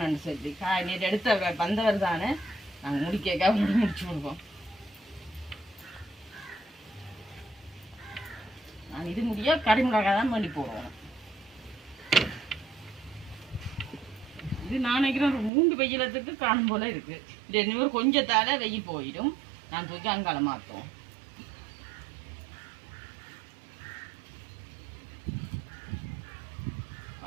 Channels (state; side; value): drops out; left; at 15.5 s